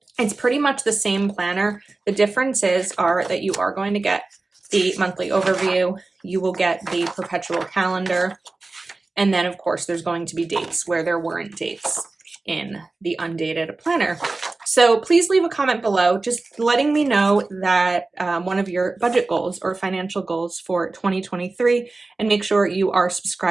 It's pretty much the same planner. The differences are that you are going to get the monthly overview, you will get the perpetual calendar, and then of course there's going to be dates where there weren't dates in the undated planner. So please leave a comment below just letting me know that one of your budget goals or financial goals for 2023, and make sure you are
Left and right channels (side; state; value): left; quieter; 3.4 dB